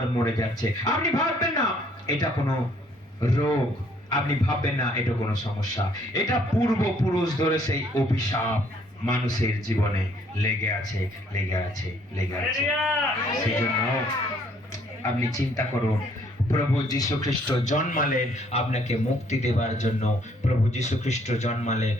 মরে যাচ্ছে। আপনি ভাববেন না এটা কোনো রোগ, আপনি ভাববেন না এটা কোনো সমস্যা, এটা পূর্বপুরুষ ধরে সেই অভিশাপ মানুষের জীবনে লেগে আছে, লেগে আছে, লেগে আছে। সেই জন্য আপনি চিন্তা করুন, প্রভু যীশু খ্রিস্ট জন্মালেন আপনাকে মুক্তি দেবার জন্য, প্রভু যীশু খ্রিস্ট জন্মালেন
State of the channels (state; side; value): normal; both; correlation 0.64